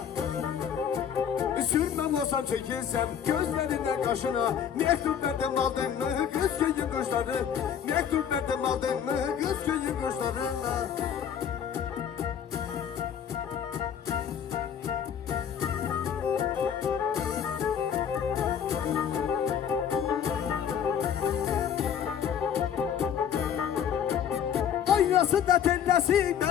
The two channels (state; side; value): quieter; right; 8.4 dB